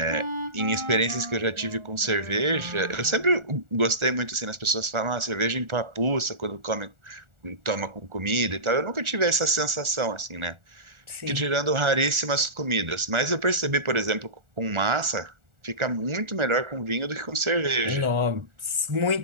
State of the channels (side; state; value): left; late; 1.4 ms